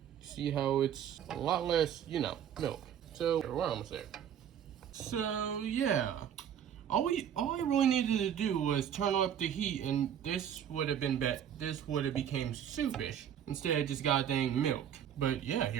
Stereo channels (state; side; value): quieter; left; 9.3 dB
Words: see how it's a lot less, milk. So we're almost there. So yeah, all I really needed to do was turn up the heat, and this would have been this would have became soupish instead of just goddamn milk. But yeah,